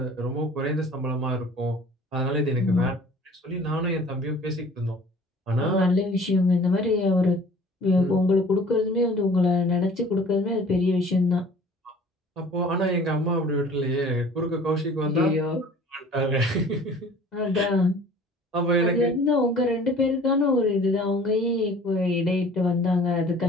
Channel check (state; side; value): normal; both; correlation 0.48